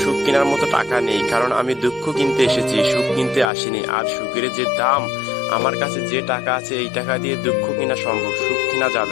সুখ কেনার মতো টাকা নেই, কারণ আমি দুঃখ কিনতে এসেছি, সুখ কিনতে আসিনি। আর সুখের যে দাম, আমার কাছে যে টাকা আছে এই টাকা দিয়ে দুঃখ কেনা সম্ভব, সুখ কেনা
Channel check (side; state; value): right; drops out; at 3.5 s